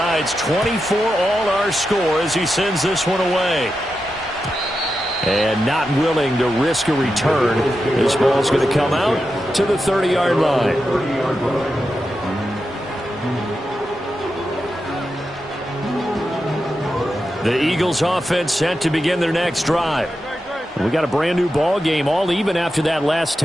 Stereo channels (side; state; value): both; normal; correlation 0.89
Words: 24 all our score as he sends this one away. And not willing to risk a return. This ball's going to come out to the 30-yard line. The Eagles offense set to begin their next drive. We got a brand new ball game, all even after that last